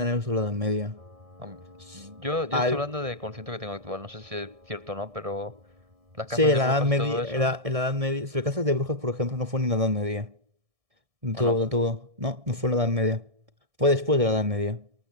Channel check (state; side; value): late; left; 1.6 ms